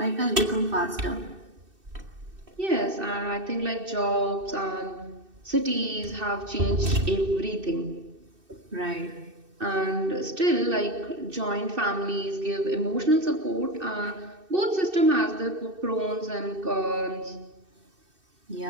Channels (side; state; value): left; late; 2.6 ms